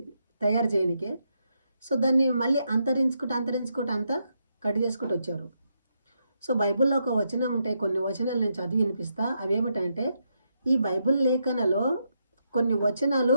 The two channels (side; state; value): both; inverted; correlation -0.81